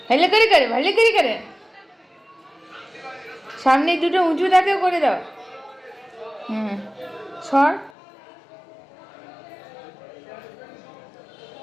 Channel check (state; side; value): drops out; right; at 7.9 s